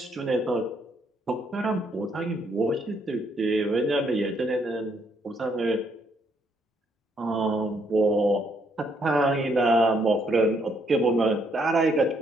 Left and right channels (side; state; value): both; normal; correlation 0.72